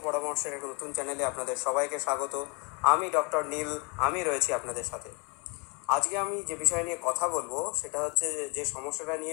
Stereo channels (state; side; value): quieter; right; 32.0 dB